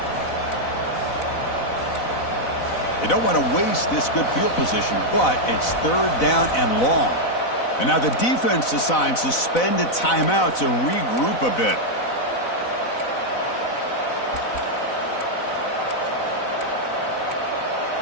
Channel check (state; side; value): late; right; 4.0 ms